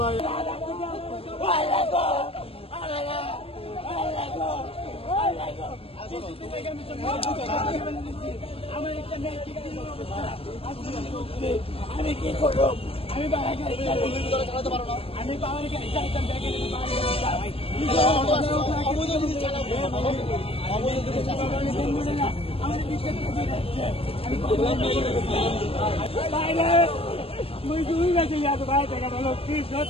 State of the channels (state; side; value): late; right; 0.28 ms